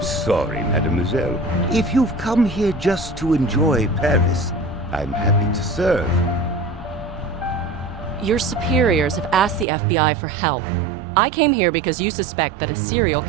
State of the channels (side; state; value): left; drops out; at 9.7 s